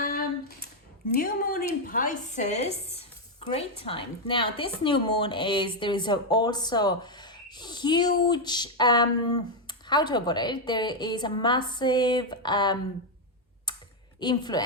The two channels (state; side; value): normal; both; correlation 0.02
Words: New moon in Pisces, great time. Now this new moon there is also huge, how to put it, there is a massive